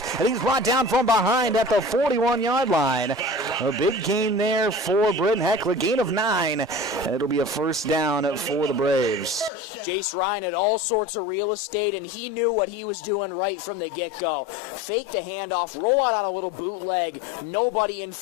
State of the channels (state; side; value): drops out; right; at 9.5 s